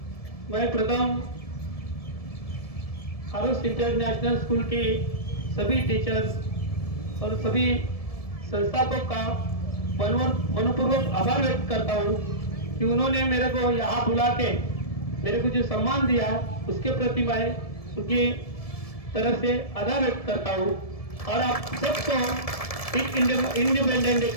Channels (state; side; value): late; right; 1.7 ms